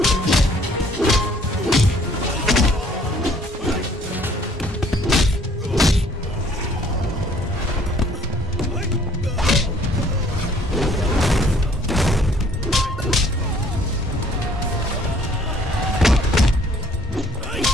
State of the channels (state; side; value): normal; both; correlation 0.59